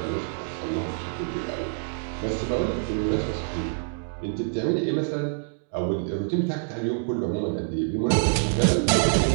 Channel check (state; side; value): silent; left; digital silence